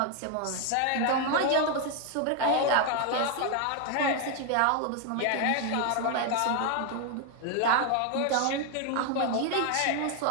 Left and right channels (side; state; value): both; different; correlation 0.01